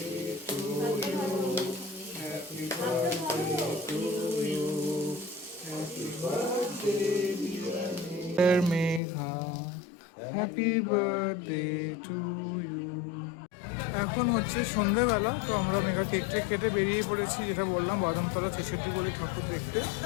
Megha, happy birthday to you. এখন হচ্ছে সন্ধ্যেবেলা, তো আমরা মেঘা কেক টেক কেটে বেরিয়ে পড়েছি, যেটা বললাম বাদামতলা 66 বলে ঠাকুর দেখতে।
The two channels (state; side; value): drops out; right; at 9.0 s